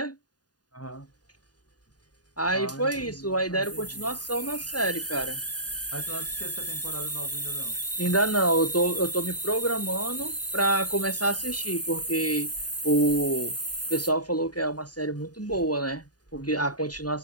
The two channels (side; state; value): right; late; 0.69 ms